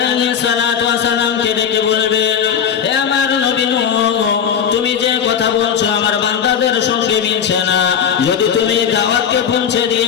সালাতু ওয়াস সালামকে ডেকে বলবেন, হে আমার নবী নূহ, তুমি যে কথা বলছো আমার বান্দাদের সঙ্গে মিলছে না। যদি তুমি দাওয়াতকে পৌঁছে দিয়ে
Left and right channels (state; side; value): quieter; right; 8.0 dB